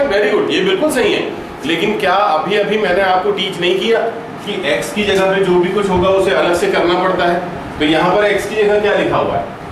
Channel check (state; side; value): identical; both; correlation 1.00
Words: very good, ये बिल्कुल सही है। लेकिन क्या अभी मैंने आपको टीच नहीं किया कि x की जगह पे जो भी कुछ होगा उसे अलग से करना पड़ता है? तो यहाँ पर x की जगह क्या लिखा हुआ है?